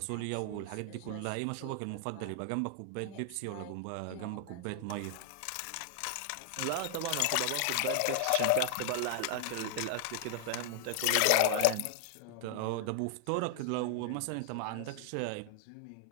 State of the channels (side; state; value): both; different; correlation -0.01